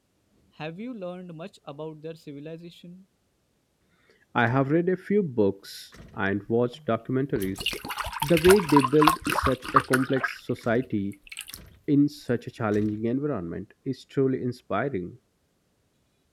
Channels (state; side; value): identical; both; correlation 1.00